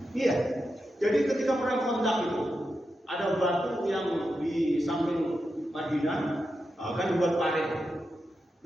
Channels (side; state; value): both; normal; correlation 0.88